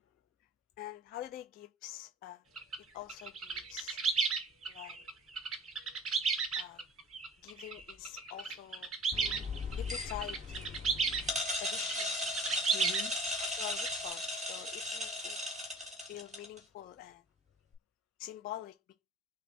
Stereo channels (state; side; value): normal; both; correlation 0.43